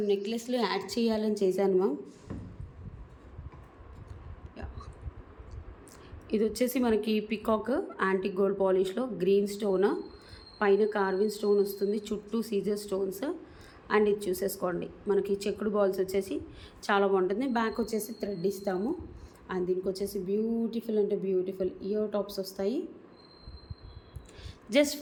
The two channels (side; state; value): both; identical; correlation 1.00